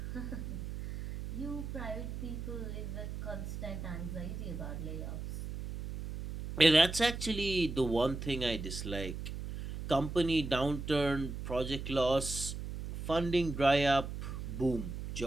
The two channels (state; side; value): noise; right; hum, 6 dB below the sound